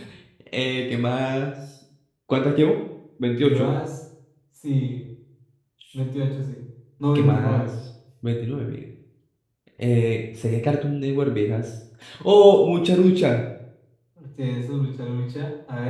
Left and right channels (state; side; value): identical; both; correlation 1.00